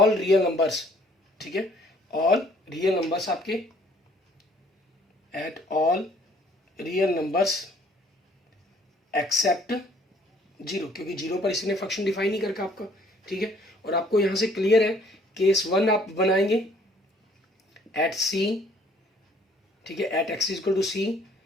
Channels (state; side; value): normal; both; correlation 0.60